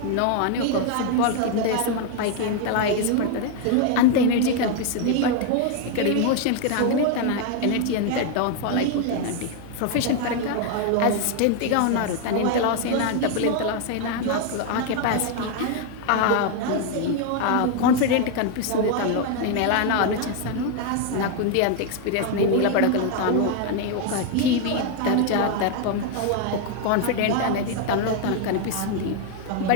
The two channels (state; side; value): different; both; correlation 0.01